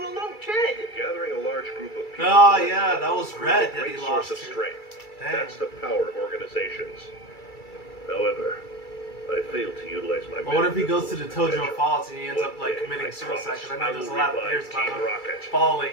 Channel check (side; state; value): right; late; 2.3 ms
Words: lone kid. Gathering a large group of people... Oh yeah, that was is Red a that he great lost source of to. strength. Dang. That's the power of organizations. However, I failed to utilize my... But what if he goes to the potential. Tojo Falls and he ends up One like day, committing I suicide? Because I know promise there's a I lot of will theories about revive him Team Rocket. falling